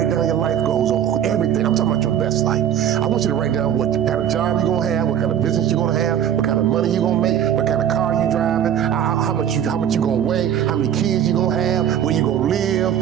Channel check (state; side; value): quieter; left; 9.7 dB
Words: down your life goals on everything. I'm talking about your best life. I want you to write down what kind of job you're going to have, what kind of business you're going to have, what kind of money you're going to make, what kind of car you're driving, how much you're going to weigh, how many kids you're going to have, where you're going to live.